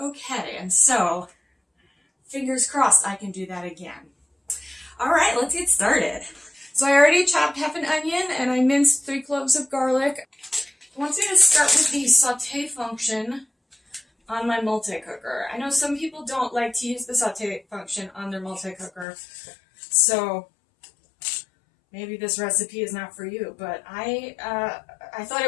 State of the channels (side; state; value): right; drops out; at 19.1 s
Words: okay, and so fingers crossed I can do that again. All right, let's get started. So I already chopped half an onion and I minced 3 cloves of garlic. I want you to start with the saute function on my multi-cooker. I know some people don't like to use the saute function on their multi-cooker, so maybe this recipe is not for you, but I thought